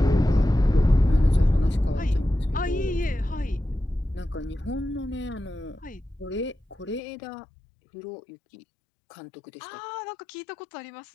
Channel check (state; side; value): drops out; right; at 7.0 s